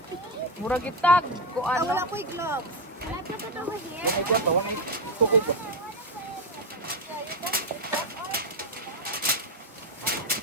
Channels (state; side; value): normal; both; correlation 0.11